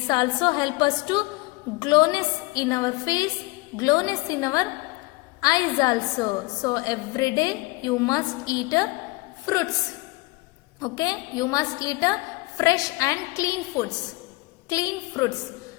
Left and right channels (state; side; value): quieter; right; 23.2 dB